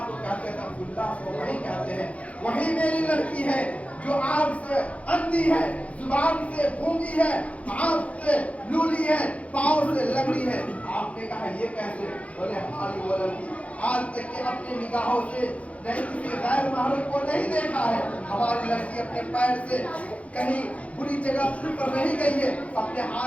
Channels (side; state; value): right; late; 0.065 ms